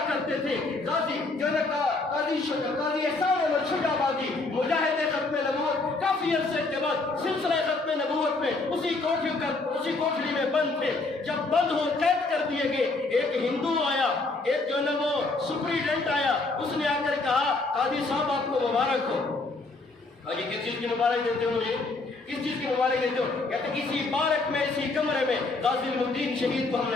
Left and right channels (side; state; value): right; quieter; 3.4 dB